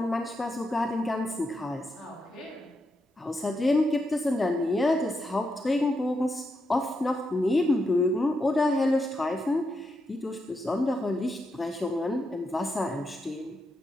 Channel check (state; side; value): normal; both; correlation 0.84